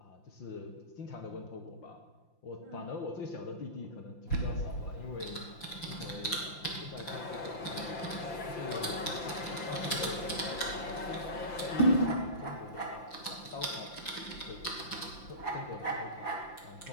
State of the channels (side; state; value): right; late; 5.8 ms